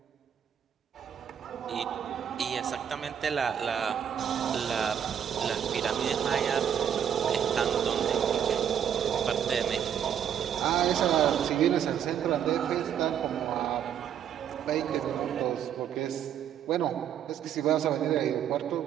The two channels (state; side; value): quieter; left; 8.9 dB